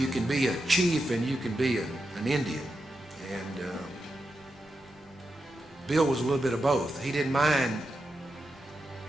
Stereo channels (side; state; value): both; normal; correlation 0.88